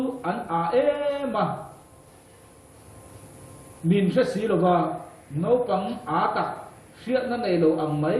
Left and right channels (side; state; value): both; identical; correlation 1.00